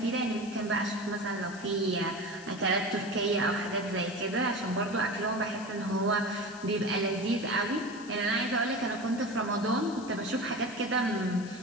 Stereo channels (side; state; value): left; noise; hiss, 19 dB below the sound